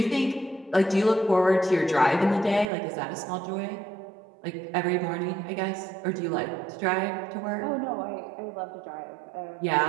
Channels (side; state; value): left; drops out; at 2.7 s